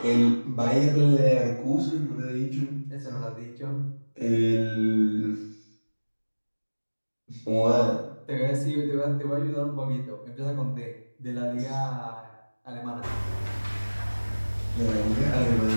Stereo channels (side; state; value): both; inverted; correlation -1.00